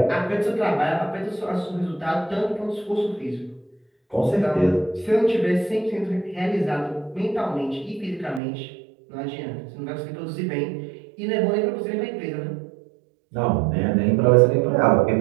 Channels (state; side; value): drops out; left; at 8.4 s